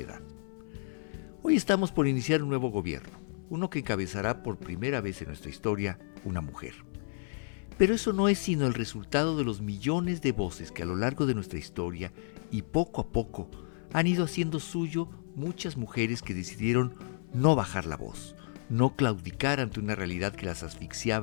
Hoy estamos por iniciar un nuevo gobierno, uno que encabezará por primera vez en nuestra historia una mujer. Pero eso no es sino el resultado de los millones de voces que a lo largo de nuestra historia y poco a poco han ido haciendo suyo muchas mujeres que decidieron no bajar la voz, no claudicar ante una realidad que las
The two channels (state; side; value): silent; right; 57 dB below the other